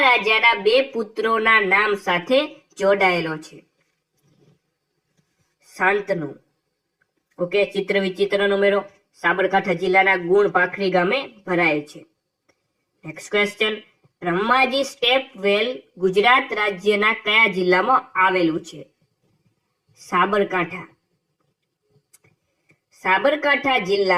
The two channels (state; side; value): identical; both; correlation 1.00